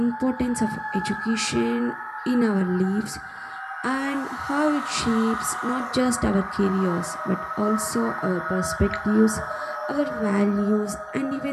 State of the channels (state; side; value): identical; both; correlation 1.00